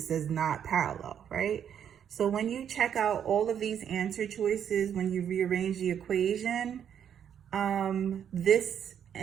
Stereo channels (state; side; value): quieter; left; 8.8 dB